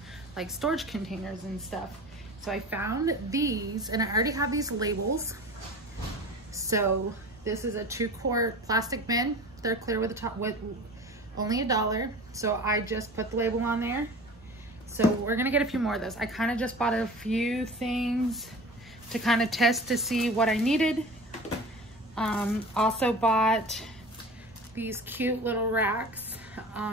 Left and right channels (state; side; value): normal; both; correlation 0.37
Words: like storage containers and stuff. So I found these, and I already have these labels. So this is a 2-quart plastic bin. They're clear with the top, with only $1. So I just put the label on there. So we're gonna get a few more of those. I kind of just bought a few things to kind of test to see what I needed. Also bought these cute little racks,